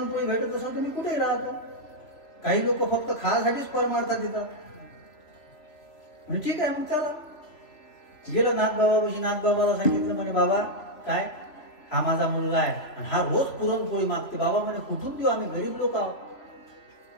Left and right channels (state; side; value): late; right; 3.0 ms